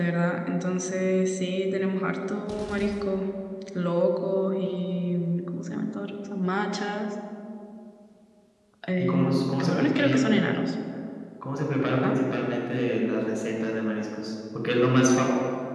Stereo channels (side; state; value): both; identical; correlation 1.00